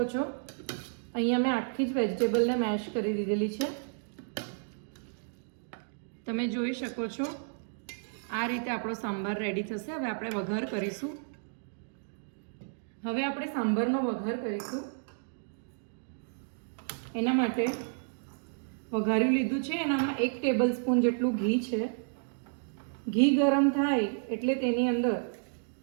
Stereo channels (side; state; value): left; silent; digital silence